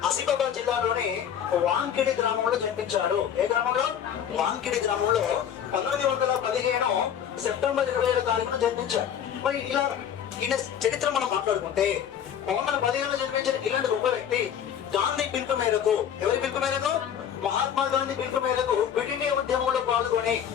ఆసిఫాబాద్ జిల్లాలోని వాంకిడి గ్రామంలో జన్మించాడు. ఏ గ్రామంలో? వాంకిడి గ్రామంలో 1915 సెప్టెంబర్ 27వ తారీఖున జన్మించాడు. మరి ఇలా ఈయన చరిత్ర మనం మాట్లాడుకుంటే, 1915 జన్మించిన ఇలాంటి గొప్ప వ్యక్తి గాంధీ పిలుపు మేరకు, ఎవరి పిలుపు మేరకు? మహాత్మా గాంధీ పిలుపు మేరకు క్విట్ ఇండియా ఉద్యమంలో పాల్గొని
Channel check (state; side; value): quieter; right; 9.0 dB